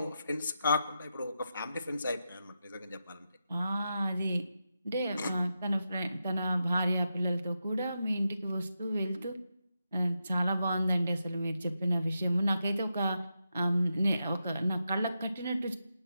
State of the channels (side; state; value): both; inverted; correlation -0.87